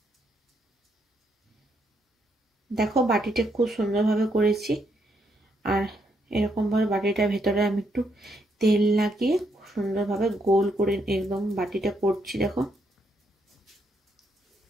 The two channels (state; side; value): normal; both; correlation 0.76